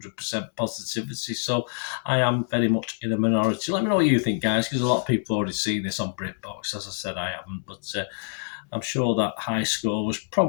positivity, so I am very much in a minority. Let me know what you think, guys, because a lot of people have already seen this on Britbox. As I said, I haven't, but I'm sure that high score was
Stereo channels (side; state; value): right; silent; digital silence